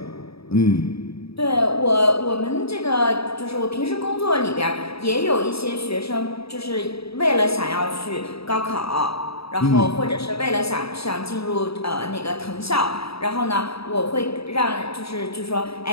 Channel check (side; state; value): right; late; 0.77 ms